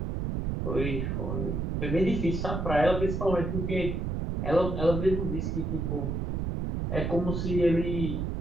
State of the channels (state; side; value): noise; right; rumble, 1 dB below the sound